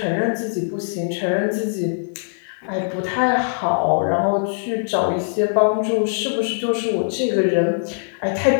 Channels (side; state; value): right; silent; 65 dB below the other